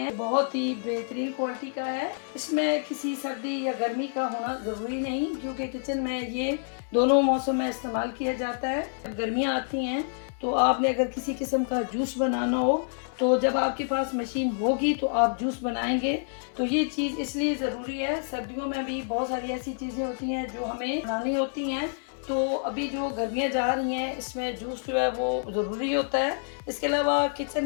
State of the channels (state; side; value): silent; right; 58 dB below the other